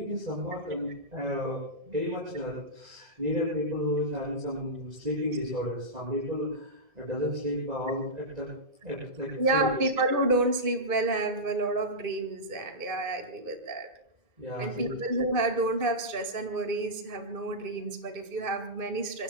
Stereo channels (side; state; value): left; late; 2.5 ms